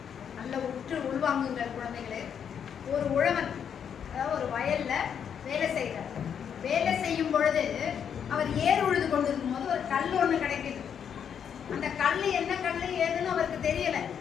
நல்ல உற்று உள்வாங்குங்கள் குழந்தைகளே. ஒரு உழவன், அதாவது ஒரு வயல்ல வேலை செய்கிறார். வேலை செய்யும் பொழுது அவர் ஏர் உழுது கொண்டிருக்கும் போது ஒரு கல் ஒன்று கிடைக்குது. அந்த கல் என்ன கல் ஏதுன்னு அவருக்கு தெரியல.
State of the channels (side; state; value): right; quieter; 8.0 dB